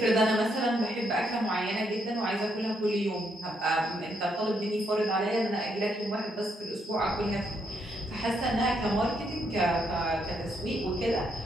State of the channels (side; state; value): both; normal; correlation 0.76